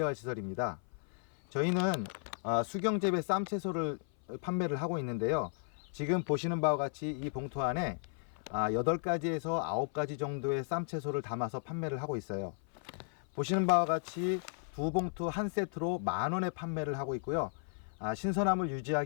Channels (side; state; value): right; silent; 55 dB below the other